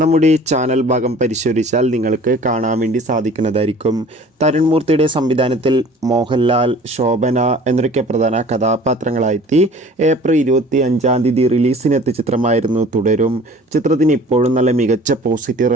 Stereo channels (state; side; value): normal; both; correlation 0.47